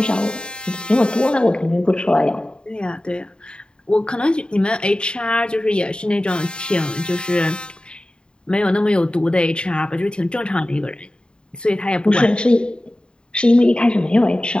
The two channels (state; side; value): late; right; 0.051 ms